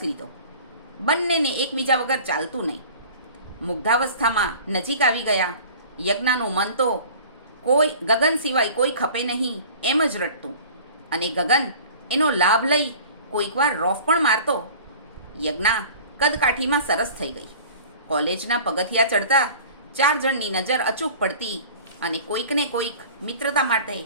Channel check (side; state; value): both; inverted; correlation -0.44